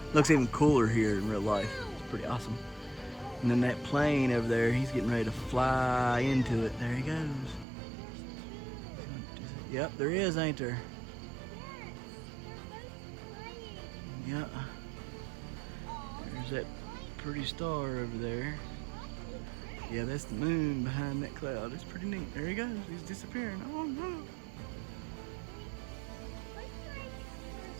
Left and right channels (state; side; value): drops out; left; at 7.7 s